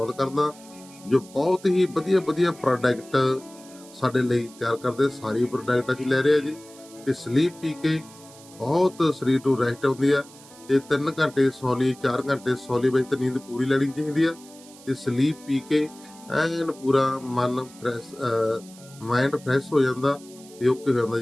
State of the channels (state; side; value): noise; right; hiss, 22 dB below the sound